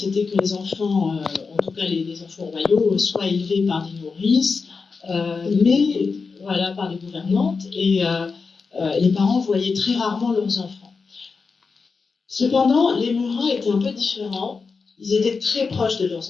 que les enfants, en tout cas les enfants royaux, soient élevés par des nourrices, mais voilà, par les gouvernantes, et les parents voyaient très rarement leurs enfants. Cependant, les Murat étaient un peu différents. Ils étaient très proches de leurs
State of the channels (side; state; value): right; quieter; 4.8 dB